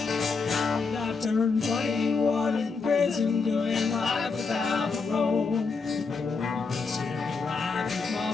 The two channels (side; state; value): right; quieter; 4.6 dB